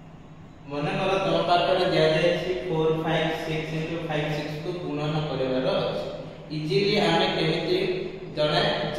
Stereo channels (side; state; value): both; identical; correlation 1.00